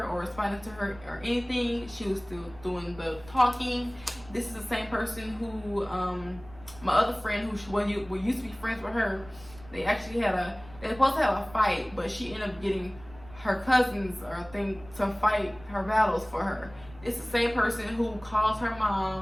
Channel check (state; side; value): noise; right; rumble, 20 dB below the sound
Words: or responding to her or anything, she was still doing the talking. This is the same person who, my other friend who we used to be friends with her, they actually they were supposed to have a fight, but she ended up getting her cousins or thing to fight her battles for her. It's the same person who calls her